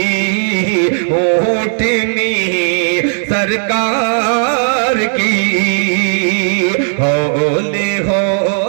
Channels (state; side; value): silent; left; digital silence